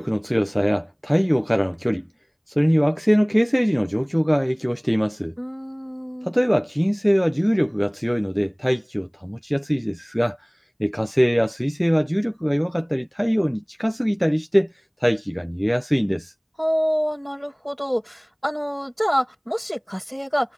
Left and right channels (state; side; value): identical; both; correlation 1.00